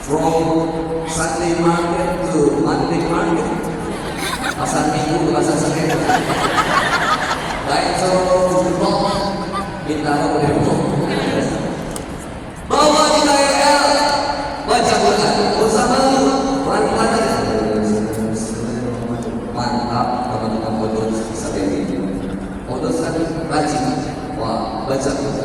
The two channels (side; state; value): both; identical; correlation 1.00